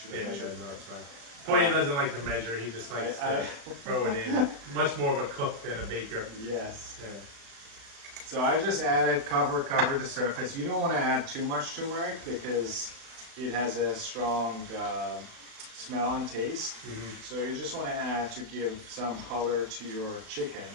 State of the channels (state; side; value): late; left; 36 ms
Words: have measured. No, it's fine. Poya doesn't like to measure. He just likes to throw it in. Much more of a cook than a baker. Yes. Yeah. So I just added cover the surface. You don't want to add too much turmeric because it has a strong smell and taste. So you just want to add to give some color to your